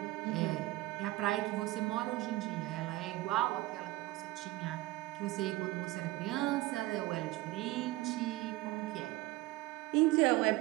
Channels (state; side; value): quieter; left; 18.8 dB